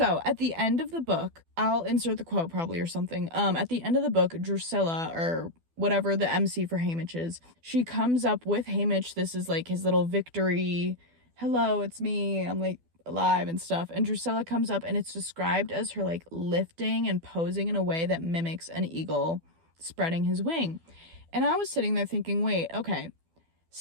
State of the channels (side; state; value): left; late; 12 ms